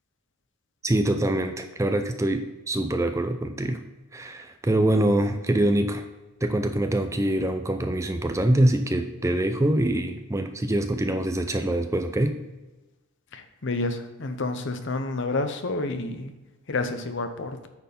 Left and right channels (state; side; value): normal; both; correlation 0.75